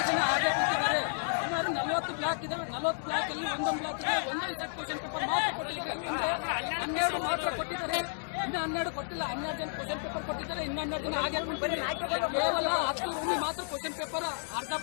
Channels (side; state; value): right; silent; digital silence